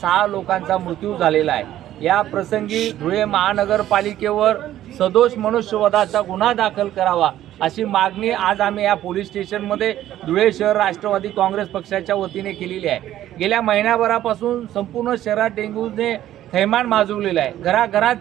लोकांचा मृत्यू झालेला आहे. या प्रसंगी धुळे महानगरपालिकेवर सदोष मनुष्यवधाचा गुन्हा दाखल करावा अशी मागणी आज आम्ही या पोलीस स्टेशनमध्ये धुळे शहर राष्ट्रवादी काँग्रेस पक्षाच्या वतीने केलेली आहे. गेल्या महिन्याभरापासून संपूर्ण शहरात डेंग्यूने थैमान माजवलेलं आहे. घराघरात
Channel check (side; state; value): left; quieter; 12.8 dB